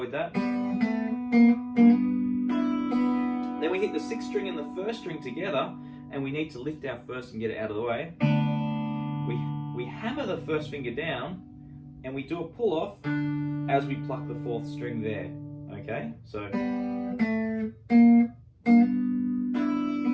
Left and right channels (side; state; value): both; identical; correlation 1.00